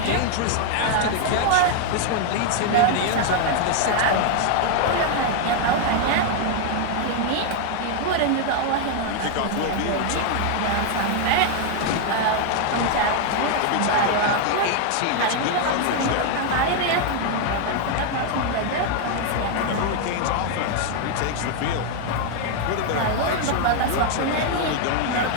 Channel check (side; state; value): both; different; correlation 0.00